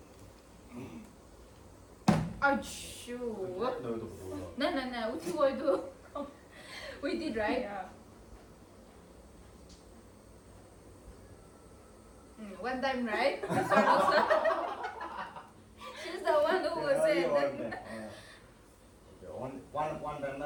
Achoo. No, itu betul. No. Uti wo itu. We did right. Yeah. One time, right? She's the one who was Okay, saying only that. one time. Okay, one time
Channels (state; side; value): identical; both; correlation 1.00